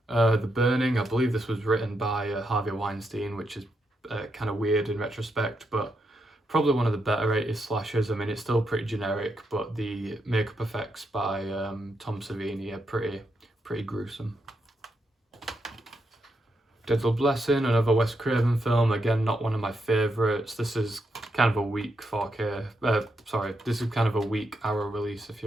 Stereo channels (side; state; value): both; normal; correlation 0.82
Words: The Burning, I believe this was written by Harvey Weinstein, which is kind of weird in retrospect, but probably one of the better 80s slashers. I mean, it's still pretty generic, but the makeup effects by Tom Savini are pretty gruesome. Deadly Blessing, another Wes Craven film. Again, not one of my favourites. This is kind of a weak 4K. This is kind of a weak Arrow release, if